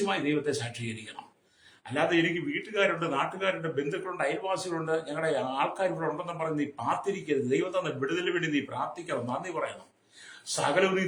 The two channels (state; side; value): identical; both; correlation 1.00